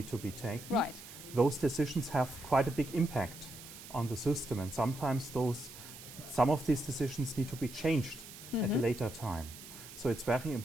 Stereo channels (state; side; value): noise; right; hiss, 15 dB below the sound